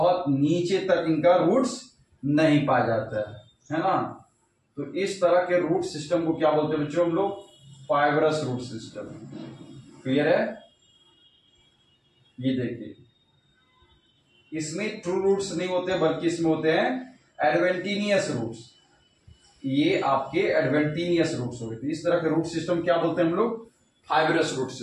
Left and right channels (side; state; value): both; identical; correlation 1.00